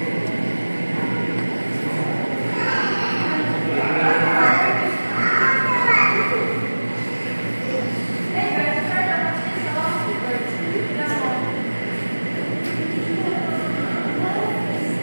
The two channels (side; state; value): both; inverted; correlation -1.00